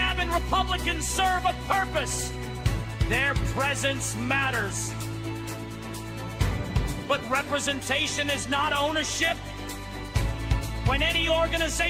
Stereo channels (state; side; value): identical; both; correlation 1.00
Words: Republicans serve a purpose. Their presence matters. But representation is not ownership. When any